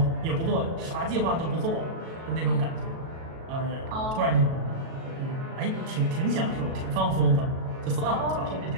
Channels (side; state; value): left; late; 37 ms